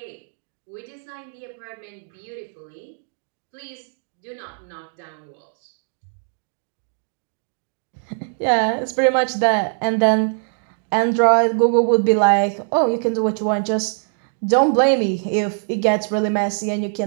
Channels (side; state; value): left; silent; digital silence